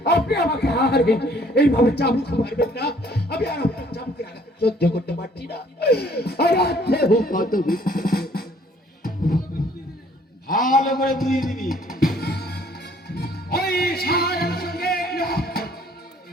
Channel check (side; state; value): both; normal; correlation 0.60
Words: আপনি আমাকে হারবেন, এইভাবে চাবুক মারবেন না। আমি আর আপনার চাবুকের আঘাত সহ্য করতে পারছি না। কত ভালো করে তুই দিবি ওই শাহজাদির সঙ্গে